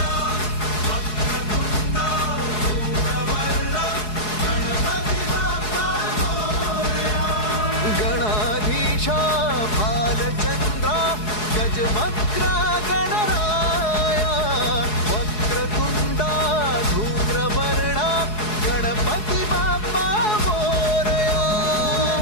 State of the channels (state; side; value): late; right; 4.7 ms